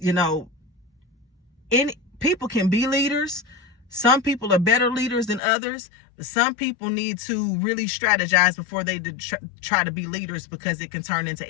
people can be leaders. Some people are better leaders than others. Some people need to really strategize before they try to be leaders, because it can turn into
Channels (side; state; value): right; drops out; at 5.4 s